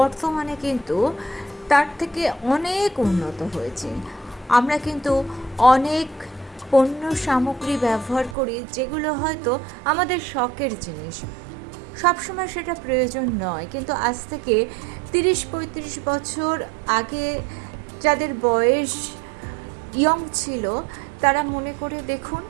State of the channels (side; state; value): left; drops out; at 8.3 s